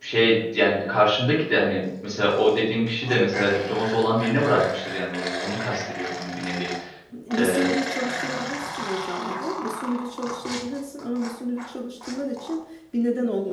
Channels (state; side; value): identical; both; correlation 1.00